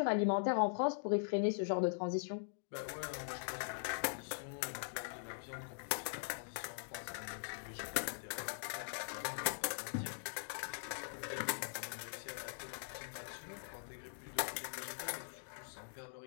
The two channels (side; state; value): right; silent; digital silence